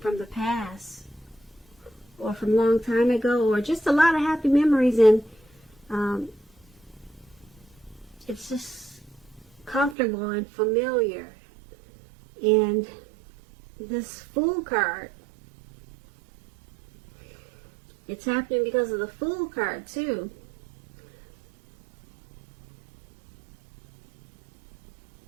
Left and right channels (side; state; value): left; drops out; at 10.0 s